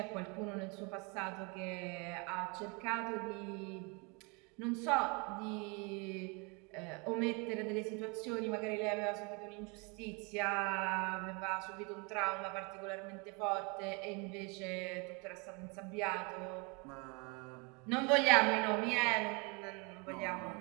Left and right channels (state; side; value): quieter; left; 31.0 dB